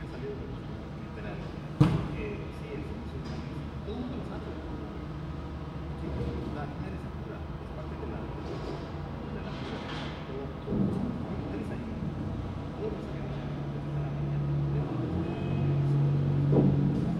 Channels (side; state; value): both; identical; correlation 1.00